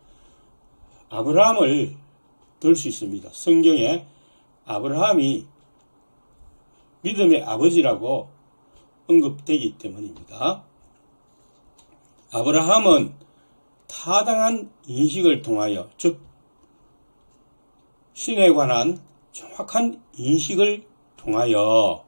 아브라함을 들 수 있습니다. 성경에 아브라함이 믿음의 아버지라고 언급되기 때문입니다. 아브라함은 타당한 인식을 통하여, 즉 신에 관한 정확한 인식을 통하여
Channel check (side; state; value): both; inverted; correlation -1.00